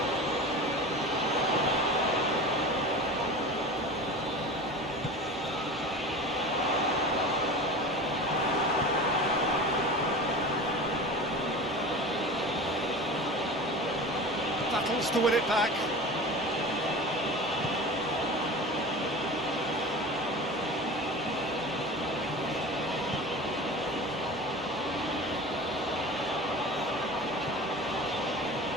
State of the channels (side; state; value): both; normal; correlation 0.34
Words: Battles to win it back.